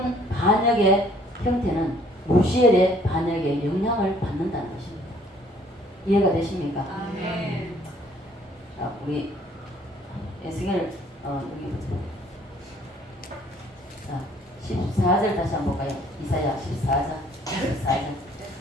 반역의 형태는 루시엘의 반역에 영향을 받는다는 것입니다. 이해가 되십니까? 아멘. 자, 우리 에스겔 여기 보세요. 자, 14절 다시 한번 볼까요? 이사야 14장.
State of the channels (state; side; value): normal; both; correlation 0.60